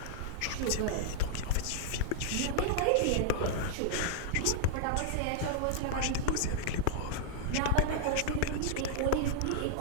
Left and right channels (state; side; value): different; both; correlation -0.01